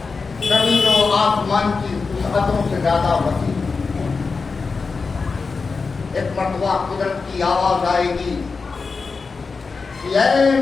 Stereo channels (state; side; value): quieter; right; 4.6 dB